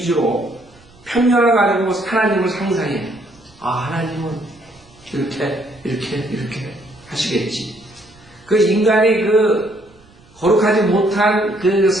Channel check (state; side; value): noise; right; rumble, 28 dB below the sound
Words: 편견을 가지고 하나님을 상상해요. 아, 하나님은 이렇게 하시겠지. 그 인간이 그 거룩하지 못한 그